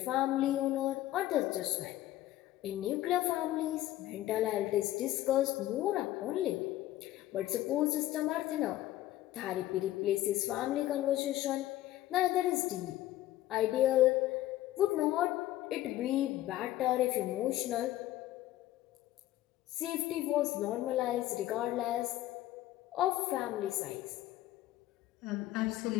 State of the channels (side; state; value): right; quieter; 14.8 dB